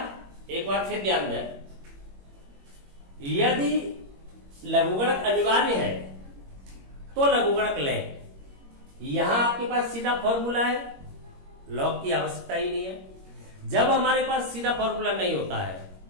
एक बार फिर ध्यान दें, यदि लघुगणक अनिवार्य है तो लघुगणक लें। यहां आपके पास सीधा फॉर्मूला है, लॉग की आवश्यकता ही नहीं है। जब हमारे पास सीधा फॉर्मूला नहीं होता है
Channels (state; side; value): late; left; 21 ms